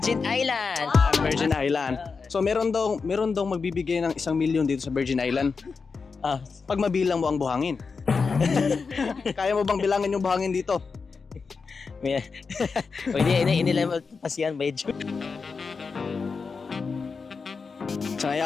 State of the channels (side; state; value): right; quieter; 4.9 dB